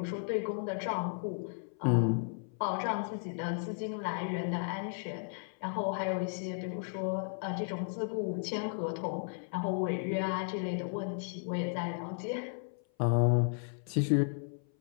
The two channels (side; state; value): right; silent; 55 dB below the other